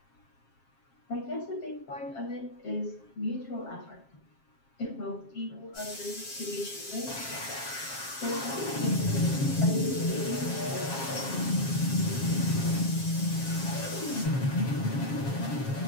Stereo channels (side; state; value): right; late; 7.4 ms